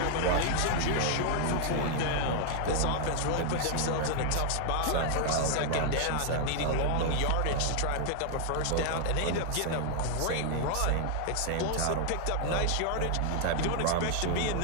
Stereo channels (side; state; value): both; different; correlation 0.00